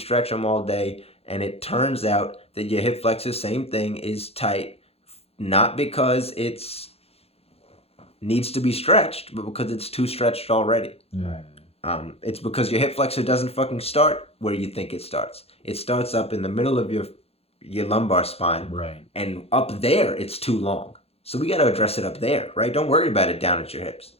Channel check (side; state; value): right; late; 0.29 ms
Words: them all day, and it turns out that your hip flexor, same thing, is tight, not because it's needs to be stretched, but because it's too stretched already. Right. It's because your hip flexor doesn't fucking start where you think it starts. It starts up in the middle of your lumbar spine, Right. and up there it's too long. So we got to address it up there, right? Don't worry about it down at your hips.